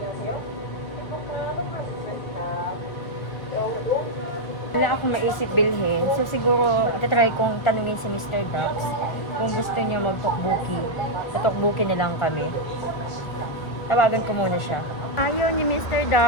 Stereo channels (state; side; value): late; right; 1.5 ms